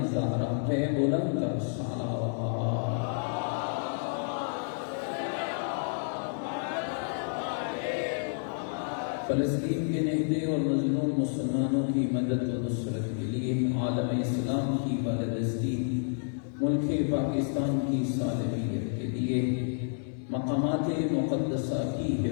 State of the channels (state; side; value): silent; right; 58 dB below the other